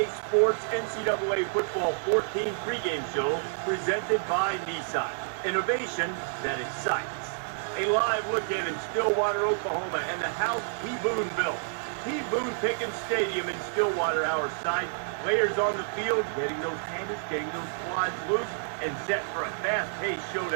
Sports NCAA Football 14 pregame show presented by Nissan. Innovation that excites. A live look in Stillwater, Oklahoma, and the house T. Boone built. T. Boone Pickens Stadium in Stillwater, our site. Players on the field, getting those handles, getting those quads loose, and set for a fast-paced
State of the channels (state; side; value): silent; left; digital silence